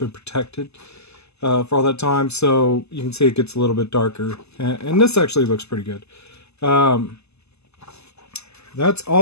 protected for all that time. So you can see it gets a little bit darker, and this actually looks pretty good. That's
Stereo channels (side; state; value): right; late; 0.80 ms